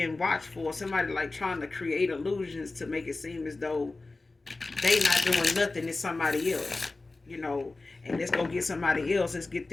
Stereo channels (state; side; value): quieter; right; 3.4 dB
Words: watched for. Somebody like trying to create illusions to make it seem as though they not doing nothing, it's somebody else, and let's go get somebody else, let's get